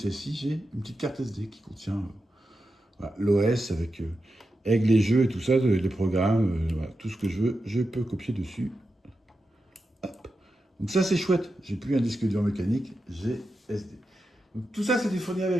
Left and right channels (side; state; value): both; normal; correlation 0.89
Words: j'ai une petite carte SD qui contient voilà, l'OS avec les jeux et tout ça, les programmes, voilà, tout ce que je veux, je peux copier dessus. Hop. Donc ça, c'est chouette. J'ai plus un disque dur mécanique, j'ai SD. Donc tout ça, c'était fourni